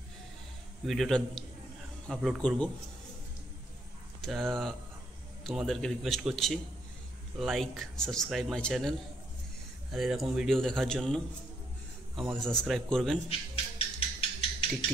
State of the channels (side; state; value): both; normal; correlation 0.73